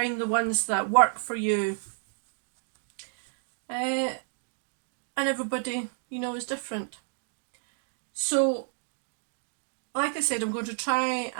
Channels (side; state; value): left; silent; 58 dB below the other